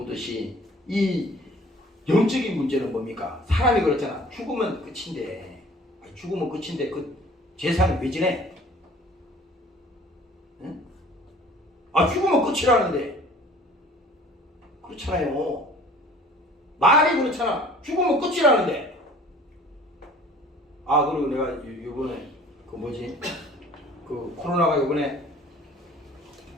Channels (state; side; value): normal; both; correlation 0.50